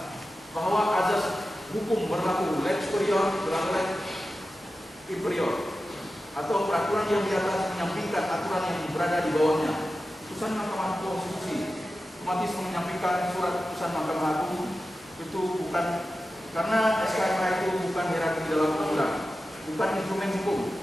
Bahwa azas hukum berlaku lex superior dan lex inferior atau peraturan yang di atas menyampingkan aturan yang berada di bawahnya. Putusan Mahkamah Konstitusi otomatis menyampingkan surat putusan Mahkamah Agung itu bukan karena SKMA itu bukan hierarki dalam undang-undang, bukan instrumen hukum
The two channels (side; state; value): both; normal; correlation 0.93